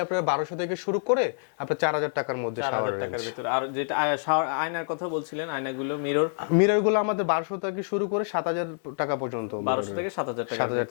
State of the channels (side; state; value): right; silent; digital silence